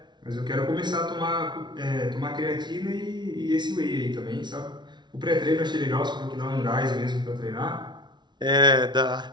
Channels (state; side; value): late; left; 0.21 ms